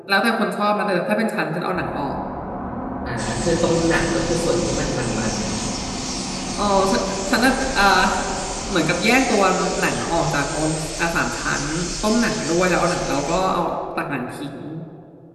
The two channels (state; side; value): identical; both; correlation 1.00